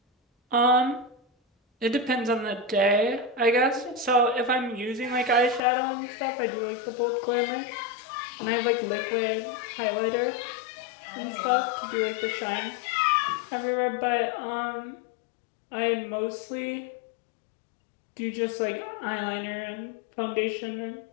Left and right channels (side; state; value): right; drops out; at 5.6 s